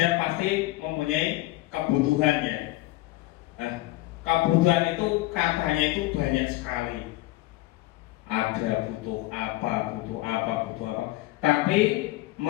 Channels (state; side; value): quieter; right; 18.3 dB